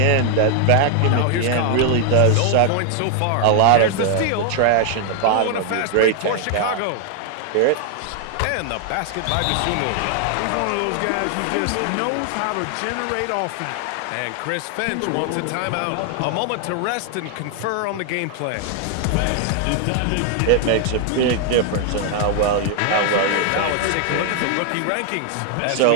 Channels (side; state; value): both; different; correlation 0.00